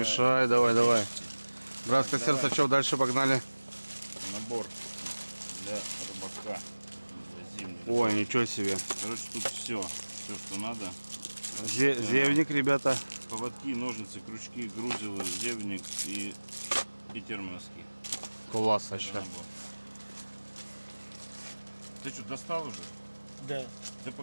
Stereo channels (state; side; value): inverted; both; correlation -1.00